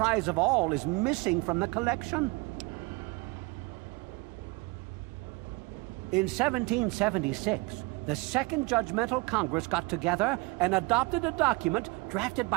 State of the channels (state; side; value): quieter; left; 25.1 dB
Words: of all is missing from the collection. In 1776, the Second Judgmental Congress got together and adopted a document drafted